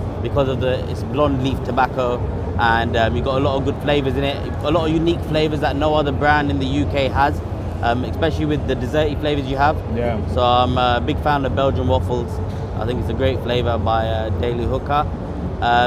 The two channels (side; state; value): both; identical; correlation 1.00